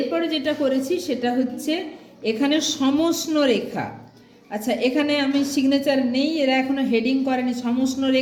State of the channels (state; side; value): identical; both; correlation 1.00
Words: যেটা করেছি সেটা হচ্ছে এখানে সমষ্ণ রেখা। আচ্ছা, এখানে আমি সিগনেচার নেই, এরা এখনো হেডিং করেনি। সমষ্ণ